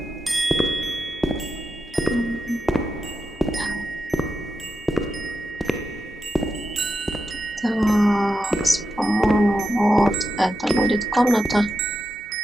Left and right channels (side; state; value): both; normal; correlation 0.88